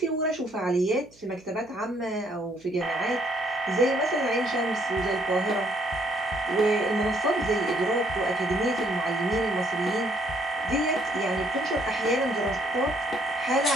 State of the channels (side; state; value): right; noise; hum, 29 dB below the sound